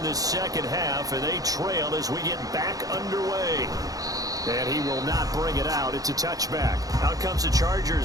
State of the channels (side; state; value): left; late; 0.17 ms